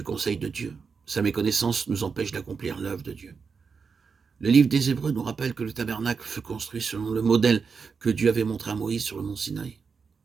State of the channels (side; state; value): left; quieter; 5.5 dB